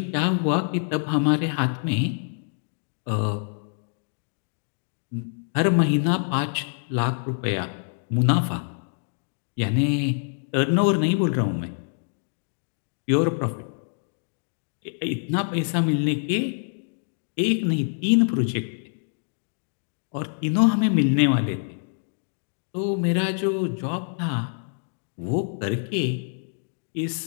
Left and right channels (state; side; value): silent; right; digital silence